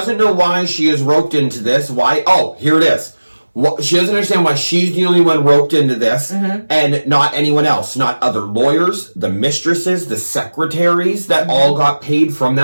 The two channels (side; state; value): both; inverted; correlation -1.00